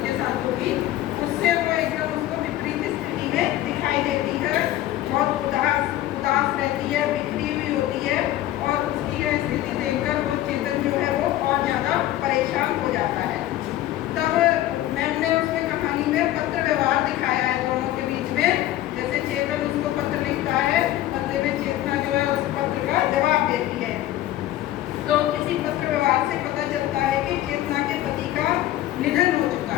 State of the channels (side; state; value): right; quieter; 14.3 dB